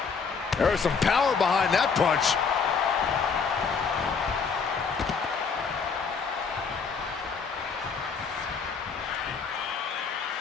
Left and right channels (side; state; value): right; quieter; 5.6 dB